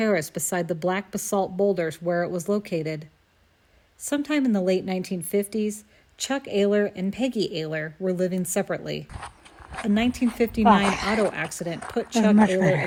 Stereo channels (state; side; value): identical; both; correlation 1.00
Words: beside the black basalt boulders where it was located. Sometime in the late 1950s, Chuck Aylor and Peggy Aylor were living separately. A 1959 auto accident put Chuck Aylor